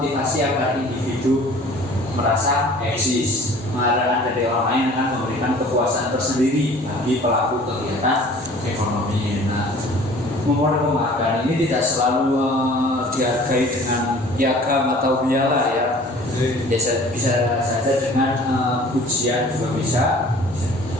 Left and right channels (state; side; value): normal; both; correlation 0.48